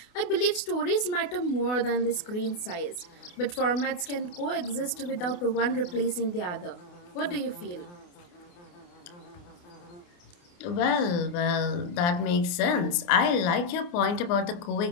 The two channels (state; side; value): late; right; 28 ms